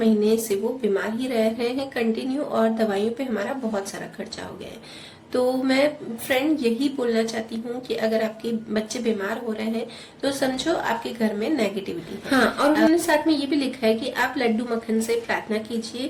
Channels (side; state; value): both; identical; correlation 1.00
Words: से वो बीमार ही रह रहे हैं कंटिन्यू, और दवाइयों पे हमारा बहुत सारा खर्चा हो गया है। तो मैं फ्रेंड यही बोलना चाहती हूँ कि अगर आपके बच्चे बीमार हो रहे हैं तो समझो आपके घर में नेगेटिविटी है। हाँ, और उन्होंने साथ में ये भी लिखा है कि आप लड्डू मक्खन से प्रार्थना